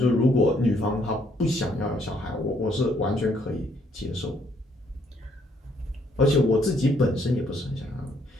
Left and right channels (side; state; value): both; normal; correlation 0.69